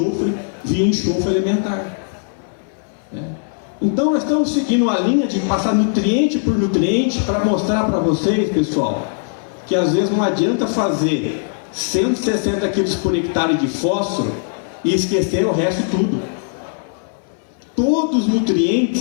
via enxofre elementar. Então nós estamos seguindo a linha de passar nutriente por nutriente para mostrar para vocês, pessoal, que às vezes não adianta fazer 160 kg por hectare de fósforo e esquecer o resto tudo. Todos os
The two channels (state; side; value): silent; right; 66 dB below the other